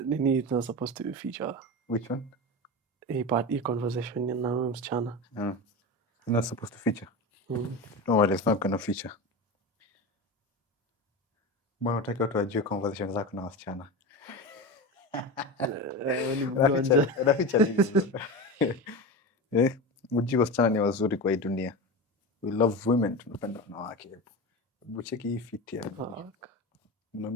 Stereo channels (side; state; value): both; normal; correlation 0.24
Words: Nini is not supposed to be feature. Which one? Hii conversation na huyo msichana. You're not supposed to feature. No worries, it's not gonna feature. Mbona unataka watu wajue conversation zako na wasichana? Unaficha nini? Mjue wasichana ni wazuri kwa hii dunia. We love women, tunapenda wanawake. Hebu cheki hii fit ya.